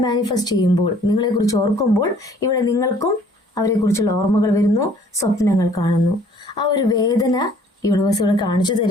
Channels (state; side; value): normal; both; correlation 0.57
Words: മാനിഫെസ്റ്റ് ചെയ്യുമ്പോൾ, നിങ്ങളെക്കുറിച്ച് ഓർക്കുമ്പോൾ ഇവിടെ നിങ്ങൾക്കും അവരെക്കുറിച്ചുള്ള ഓർമ്മകൾ വരുന്നു, സ്വപ്നങ്ങൾ കാണുന്നു. ആ ഒരു വേദന യൂണിവേഴ്സ് ഇവിടെ കാണിച്ചു